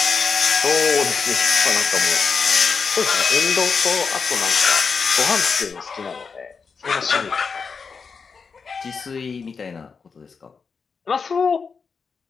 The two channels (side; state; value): right; quieter; 5.4 dB